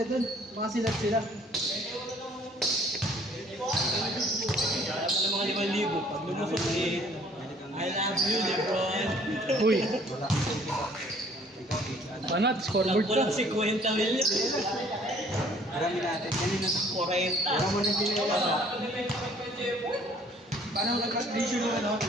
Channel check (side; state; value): both; normal; correlation 0.57